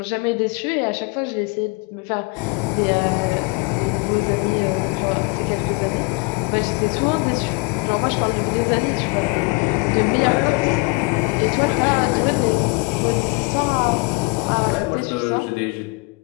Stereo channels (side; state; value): right; quieter; 28.2 dB